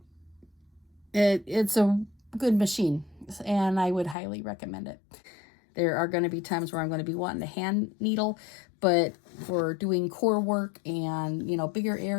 it's a good machine, and I would highly recommend it. There are going to be times where I'm going to be wanting to hand needle, but for doing core work and, you know, bigger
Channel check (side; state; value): right; drops out; at 4.2 s